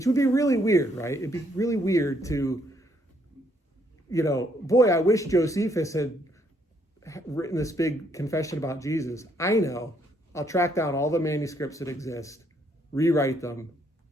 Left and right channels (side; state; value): both; normal; correlation 0.70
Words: would be really weird, right? It'd be really weird to, boy, I wish Josephus had written this big confession about Jesus. I know. I'll track down all the manuscripts that exist, rewrite them,